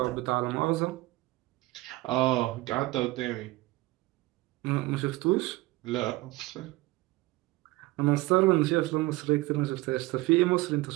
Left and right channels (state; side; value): quieter; left; 20.2 dB